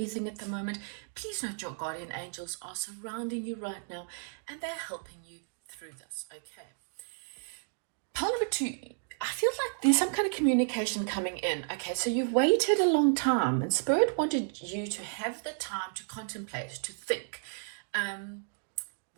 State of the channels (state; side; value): silent; left; digital silence